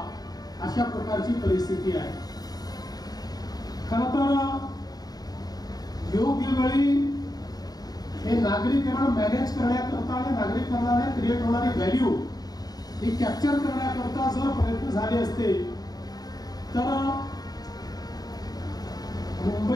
अशा प्रकारची परिस्थिती आहे. खरं तर योग्य वेळी हे नागरीकरण मॅनेज करण्याकरता आणि नागरिकांना क्रिएट होणारी व्हॅल्यू ही कॅप्चर करण्याकरता जर प्रयत्न झाले असते तर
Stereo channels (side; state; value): right; late; 0.19 ms